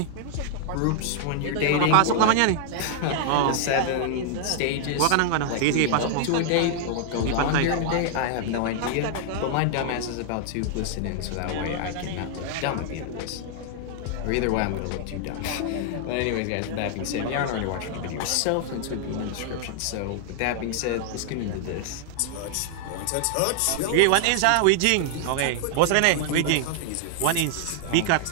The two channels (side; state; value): both; different; correlation 0.00